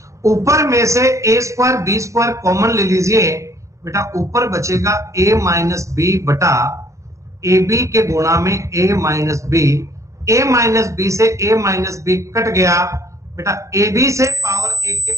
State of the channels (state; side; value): late; left; 0.15 ms